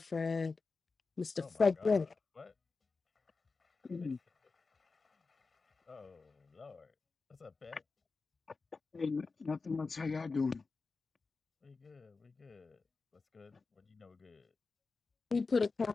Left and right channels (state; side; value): quieter; right; 4.2 dB